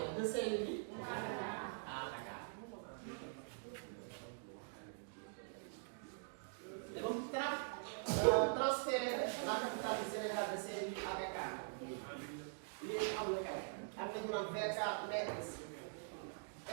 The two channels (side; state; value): left; silent; digital silence